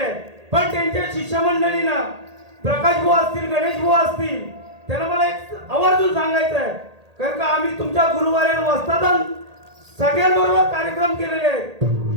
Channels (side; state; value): left; late; 1.8 ms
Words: पण त्यांच्या शिष्यमंडळींना प्रकाश बुवा असतील गणेश बुवा असतील त्यांना मला एक आवर्जून सांगायचं आहे कारण का आम्ही तुमच्या गुरुवाऱ्या वस्तादान सगळ्यांबरोबर कार्यक्रम केलेले आहेत.